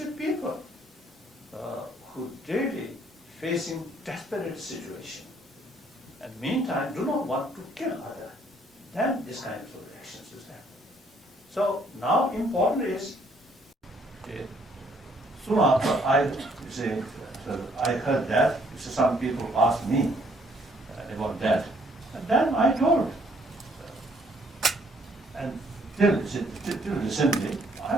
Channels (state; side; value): normal; both; correlation 0.66